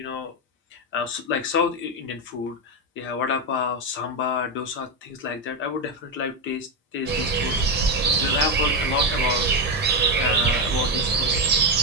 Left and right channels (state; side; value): normal; both; correlation 0.08